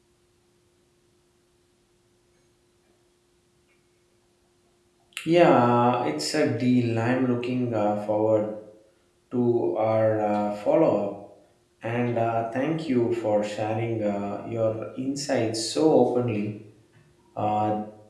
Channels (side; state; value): both; identical; correlation 1.00